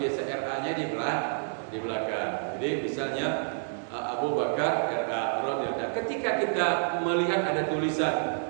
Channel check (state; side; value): silent; left; digital silence